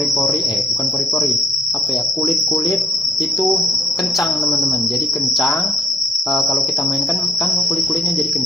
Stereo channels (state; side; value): normal; both; correlation 0.64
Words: kulit-kulit itu kencang teman-teman. Jadi kencang, kalau kita mainkan kan kulit-kulitnya jadi